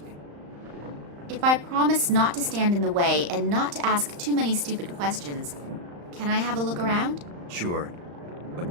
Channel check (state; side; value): late; left; 35 ms